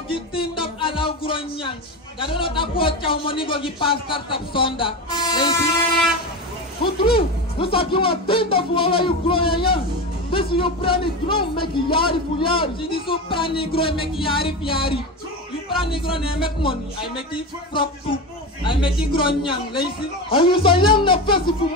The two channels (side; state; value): both; normal; correlation 0.21